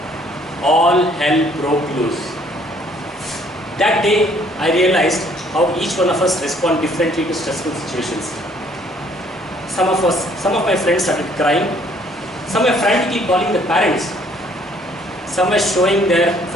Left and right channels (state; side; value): normal; both; correlation 0.62